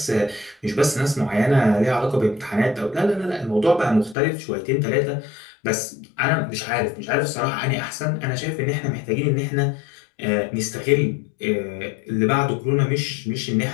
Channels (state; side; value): drops out; right; at 4.2 s